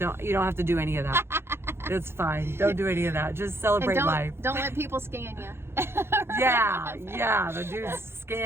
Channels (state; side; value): late; left; 0.12 ms